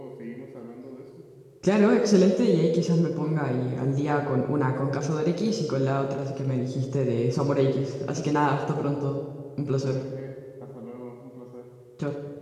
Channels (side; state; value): both; identical; correlation 1.00